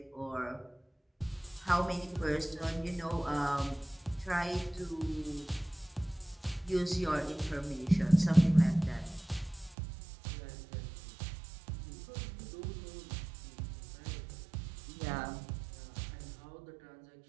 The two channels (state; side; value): drops out; left; at 9.8 s